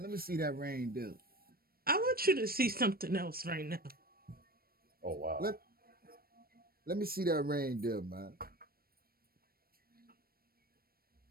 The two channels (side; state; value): left; late; 0.44 ms